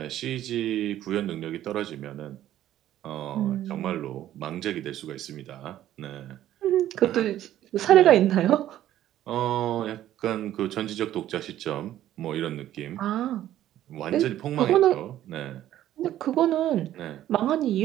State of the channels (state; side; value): quieter; left; 12.6 dB